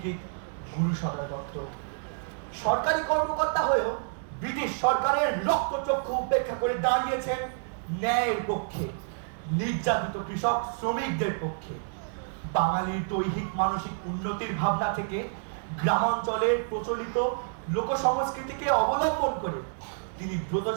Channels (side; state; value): left; silent; digital silence